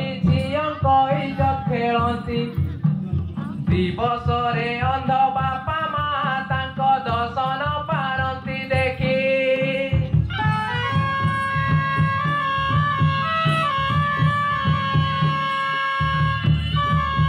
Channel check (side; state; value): both; identical; correlation 1.00